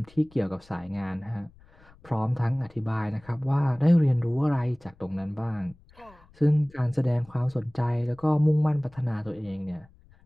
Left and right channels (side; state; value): left; noise; rumble, 26 dB below the sound